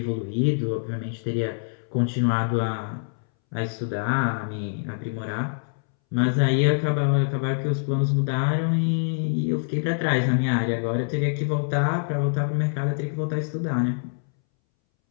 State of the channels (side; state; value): right; silent; 62 dB below the other